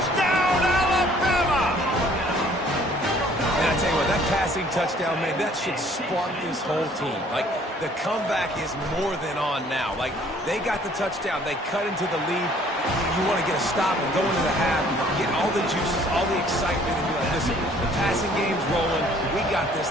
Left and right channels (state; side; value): normal; both; correlation 0.57